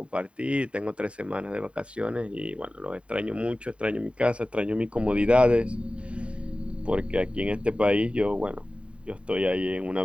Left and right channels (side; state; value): left; late; 0.060 ms